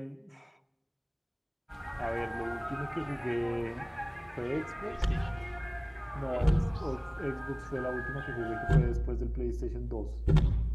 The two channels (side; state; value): both; identical; correlation 1.00